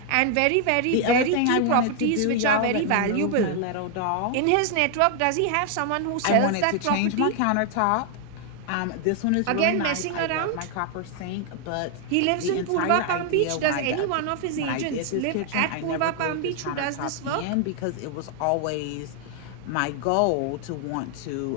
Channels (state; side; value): different; both; correlation 0.00